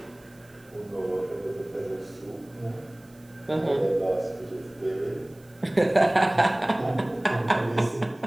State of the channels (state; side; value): noise; right; hiss, 30 dB below the sound